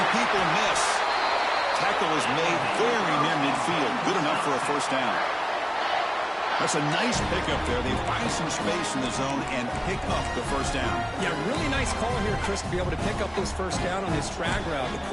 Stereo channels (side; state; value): both; identical; correlation 1.00